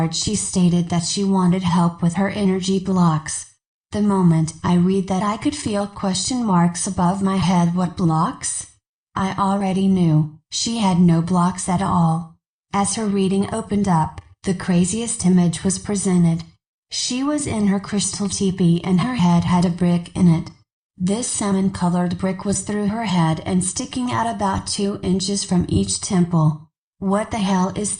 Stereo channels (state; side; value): identical; both; correlation 1.00